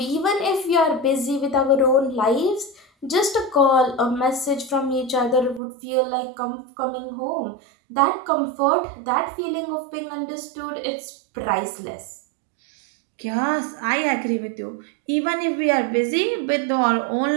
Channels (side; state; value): left; drops out; at 5.6 s